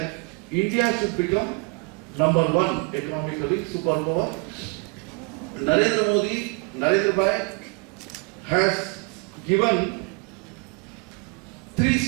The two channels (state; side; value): quieter; left; 31.2 dB